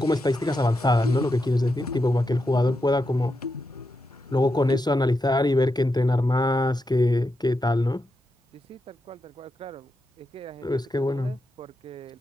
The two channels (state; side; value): normal; both; correlation 0.86